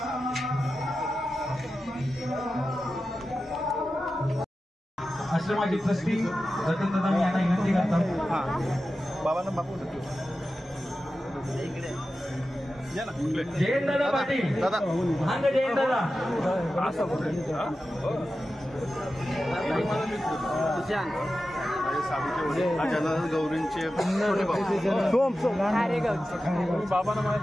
आश्रमाची ट्रस्टी रतन दादा मी यांना विनंती करतो. बाबांना बापू जयंत दादा पाटील दादा हांग जयंत दादा गौरींचे बाबांना मला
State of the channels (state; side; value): normal; both; correlation 0.93